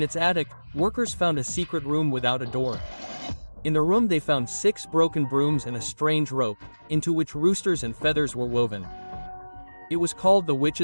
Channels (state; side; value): inverted; both; correlation -1.00